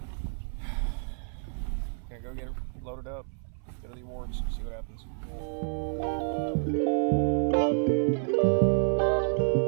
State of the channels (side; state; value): left; silent; 58 dB below the other